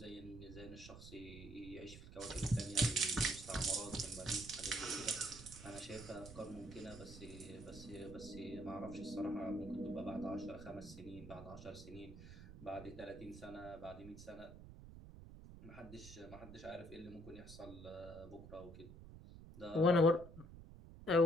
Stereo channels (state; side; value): noise; right; rumble, 14 dB below the sound